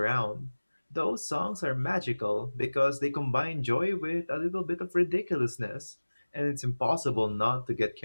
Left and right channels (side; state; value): both; inverted; correlation -1.00